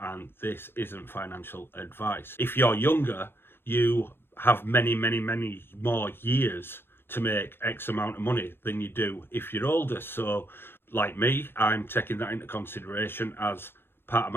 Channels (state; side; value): late; right; 0.11 ms